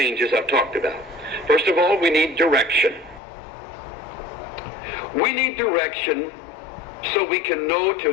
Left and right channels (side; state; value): right; drops out; at 3.2 s